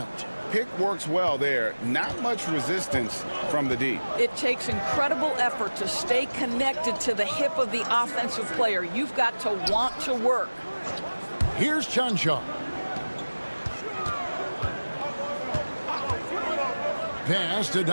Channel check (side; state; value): both; inverted; correlation -1.00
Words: Pick works well there. Not much resistance from the D. It takes incredible effort to stay connected to the hip of the offensive player. You've got to want to work. Here's Chanshaw. Pass to